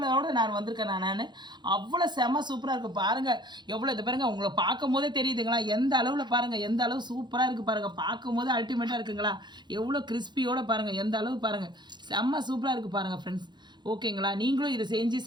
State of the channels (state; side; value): late; left; 0.21 ms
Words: நான் வந்திருக்கேன். நான் அவ்வளோ செம்ம சூப்பராக இருக்குது. பாருங்கள் எவ்வளோ இது பாருங்கள், உங்களை பார்க்கும் போதே தெரியுதுங்களா? எந்த அளவில் பாருங்கள், எந்த அளவு சூப்பராக இருக்குது பாருங்கள். பார்க்கும்போது அல்டிமேட்டாக இருக்குங்களா? எவ்வளோ கிறிஸ்பியோடு பாருங்கள், எந்த அளவு பாருங்கள், செம்ம சூப்பராக இருக்குது பாருங்கள் ஃப்ரெண்ட்ஸ். ஓகேங்களா? நீங்களும் இதை செஞ்சு